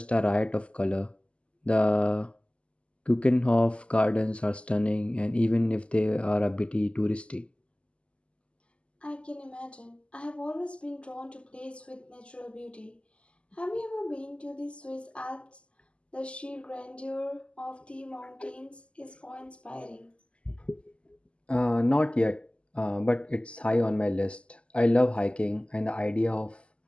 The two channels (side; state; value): right; late; 0.055 ms